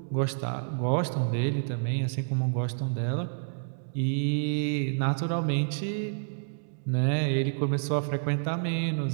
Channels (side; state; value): left; silent; digital silence